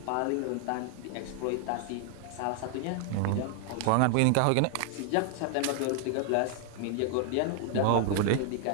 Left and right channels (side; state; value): both; different; correlation 0.00